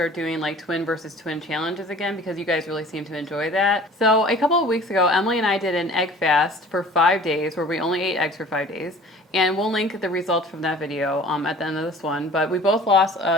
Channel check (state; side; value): normal; both; correlation 0.46